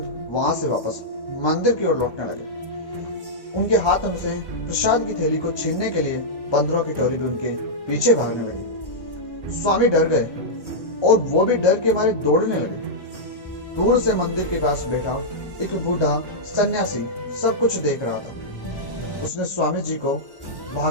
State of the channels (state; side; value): late; right; 1.1 ms